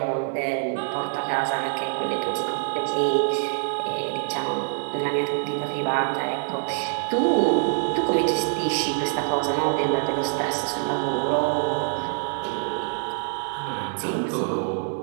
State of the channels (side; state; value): left; silent; 62 dB below the other